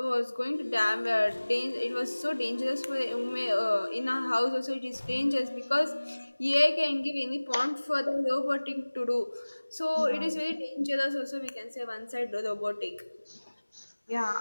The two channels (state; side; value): inverted; both; correlation -1.00